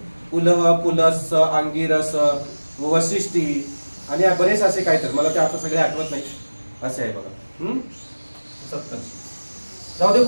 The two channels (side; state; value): both; inverted; correlation -1.00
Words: पुलह, पुलस, अंगिरस, वशिष्ठी आणि बरेच असे काहीतरी, मला ते आता सगळे आठवत नाही, असे आहे बघा. सप्तर्षी. जाऊ दे